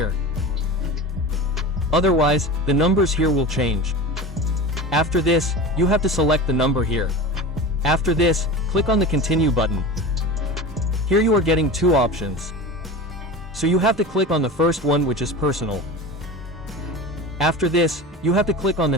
Otherwise, the numbers here will change. After this, you have to select the number here. After this, click on the Continue button. Here you are getting 2 options. So you have to click on the first one, which is personal. After this, you have to click on the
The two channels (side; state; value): both; normal; correlation 0.31